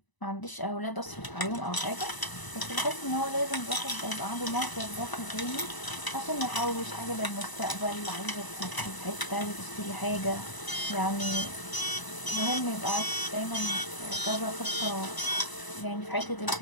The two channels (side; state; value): right; late; 1.0 ms